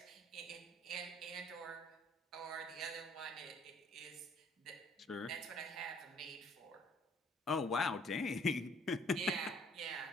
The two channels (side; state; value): both; normal; correlation 0.59